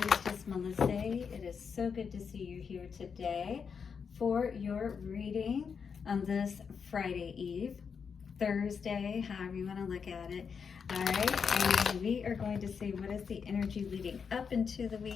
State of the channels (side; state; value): right; quieter; 6.2 dB